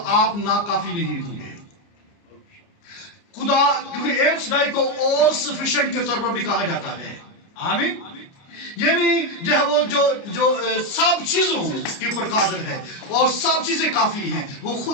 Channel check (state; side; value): late; right; 29 ms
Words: नाकाफी नहीं होंगे। खुदा, क्योंकि एल शदाई को ऑल सफिशिएंट के तौर पर भी कहा जाता है। आमीन। यानी जो है वो जो सब चीजों के ऊपर कादिर है और सब चीजें काफी हैं, वो